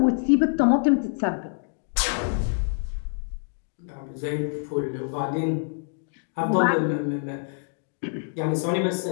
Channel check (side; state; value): right; silent; 61 dB below the other